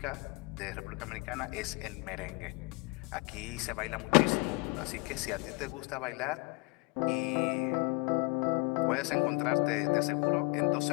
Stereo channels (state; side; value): quieter; right; 29.1 dB